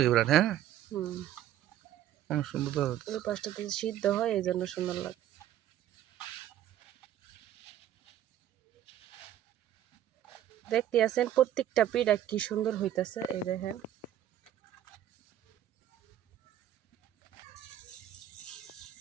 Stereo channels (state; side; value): quieter; left; 11.5 dB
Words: বিরাট। হ্যাঁ, হুম, অনেক সুন্দর তো। ওই পাশটাতে সিদ্ধ হয়, এই জন্য সুন্দর লাগে। দেখতে আছেন প্রত্যেকটা পিঠা কি সুন্দর হইতাছে, এই দেখেন।